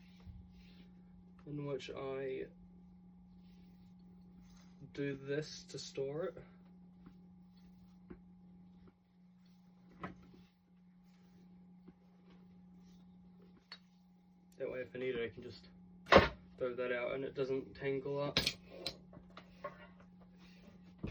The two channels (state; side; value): identical; both; correlation 1.00